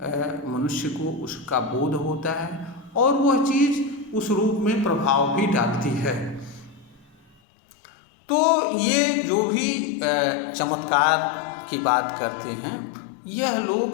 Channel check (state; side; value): drops out; right; at 7.4 s